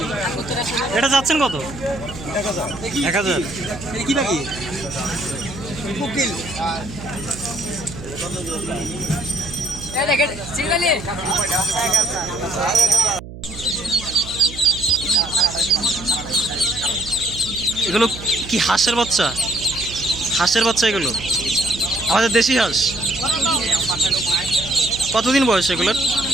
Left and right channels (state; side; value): noise; right; hum, 13 dB below the sound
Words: এটা যাচ্ছেন কত? 1000। কি বাকি? কোকিল। এগুলো কি হাঁসের বাচ্চা? হাঁসের বাচ্চা এগুলো? আমাদের দেশি হাঁস। কতদিন বয়স এগুলোর?